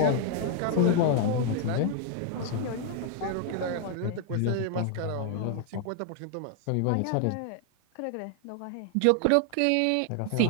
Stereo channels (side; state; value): both; different; correlation 0.00